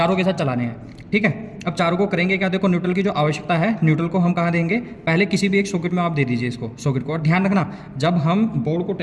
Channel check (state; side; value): identical; both; correlation 1.00